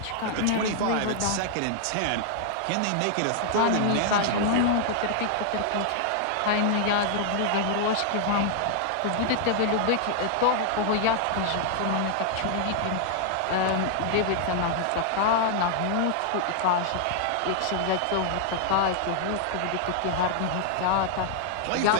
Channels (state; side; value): different; both; correlation 0.00